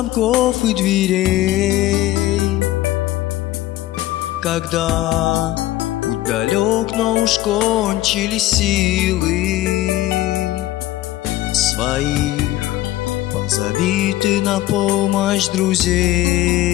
и дверей, когда путь далек, но уж кончились силы. Своих позови ты на помощь друзей,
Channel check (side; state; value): right; quieter; 15.6 dB